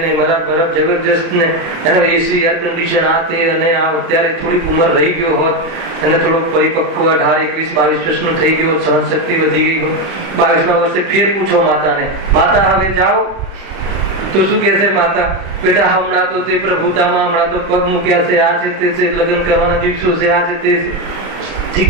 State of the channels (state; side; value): late; left; 31 ms